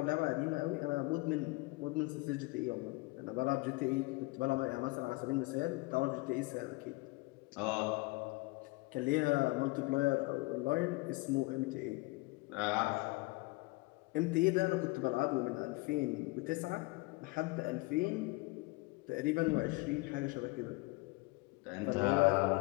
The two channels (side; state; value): right; quieter; 24.0 dB